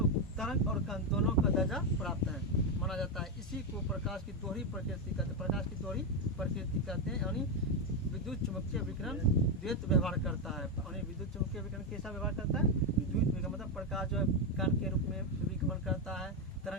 तरंग और कण दोनों का दर्जा प्राप्त है माना जाता है। इसी को प्रकाश की दोहरी प्रकृति कहते हैं। प्रकाश की दोहरी प्रकृति कहते हैं। यानी विद्युत चुंबकीय विकिरण द्वैत व्यवहार करता है। यानी विद्युत चुंबकीय विकिरण कैसा व्यवहार करता है? विद्युत विकिरण मतलब प्रकाश जो है कण के रूप में भी गमन करता है,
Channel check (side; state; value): both; normal; correlation 0.06